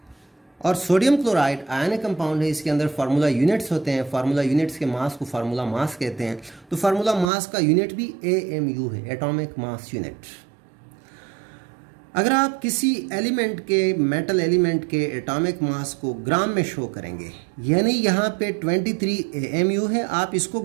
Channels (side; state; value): left; drops out; at 7.3 s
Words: और सोडियम क्लोराइड आयनिक कंपाउंड है, इसके अंदर फार्मूला यूनिट्स होते हैं. फार्मूला यूनिट्स के मास को फार्मूला मास कहते हैं. तो फार्मूला मास का यूनिट भी AMU है, एटॉमिक मास यूनिट. अगर आप किसी एलिमेंट के, मेटल एलिमेंट के एटॉमिक मास को ग्राम में शो करेंगे, यानी यहाँ पे 23 AMU है, आप इसको